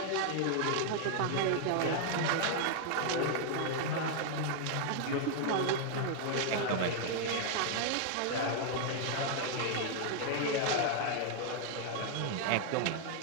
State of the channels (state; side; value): different; both; correlation 0.00